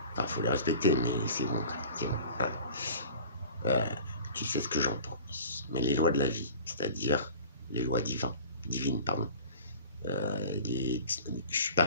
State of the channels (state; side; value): inverted; both; correlation -0.42